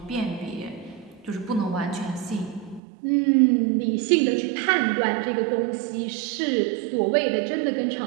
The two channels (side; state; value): left; drops out; at 2.8 s